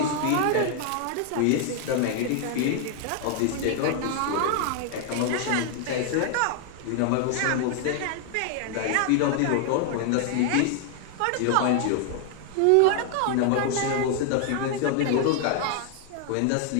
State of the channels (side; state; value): both; different; correlation 0.00